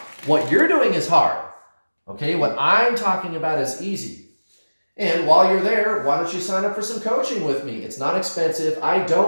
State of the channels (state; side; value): inverted; both; correlation -1.00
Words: What you're doing is hard. Okay, what I'm talking about is easy. And while you're there, why don't you sign up for some coaching with me? It's not expensive. I